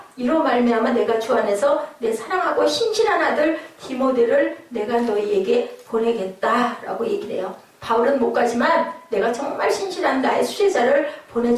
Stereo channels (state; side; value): identical; both; correlation 1.00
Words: 이로 말미암아 내가 주 안에서 내 사랑하고 신실한 아들 디모데를 내가 너희에게 보내겠다라고 얘기를 해요. 바울은 못 가지만 내가 정말 신실한 나의 수제자를